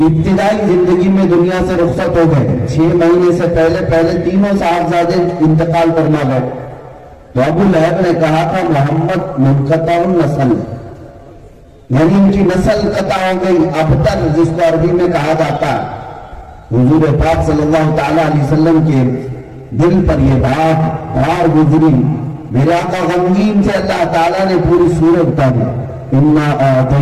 ابتدائی زندگی میں دنیا سے رخصت ہو گئے. 6 مہینے سے پہلے تینوں صاحبزادے انتقال کرنا گئے. تو ابو لہب نے کہا تھا محمد منقطع النسل، یعنی ان کی نسل قطع ہو گئی. ابتر جس کو عربی میں کہا جاتا ہے. حضور پاک صلی اللہ تعالیٰ علیہ وسلم کے دل پر یہ بات بار گزری. میرے آقا غمگین سے اللہ تعالیٰ نے پوری سورت اتاری. انا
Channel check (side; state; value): both; identical; correlation 1.00